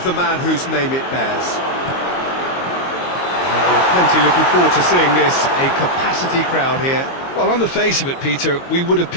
the man whose name it bears. And we're plenty looking forward to seeing this, a capacity crowd here. Well, on the face of it, Peter, we would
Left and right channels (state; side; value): late; right; 22 ms